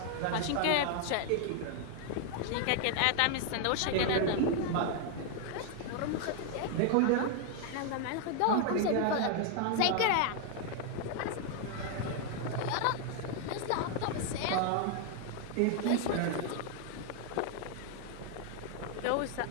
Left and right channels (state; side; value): different; both; correlation 0.00